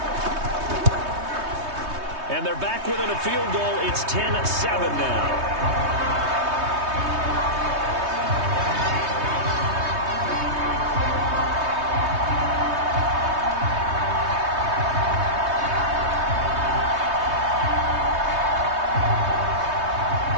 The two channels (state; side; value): late; left; 3.2 ms